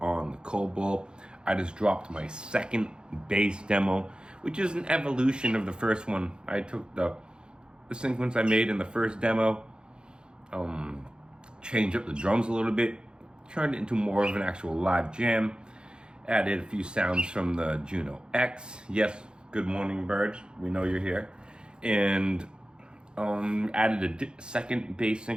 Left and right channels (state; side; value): late; left; 0.049 ms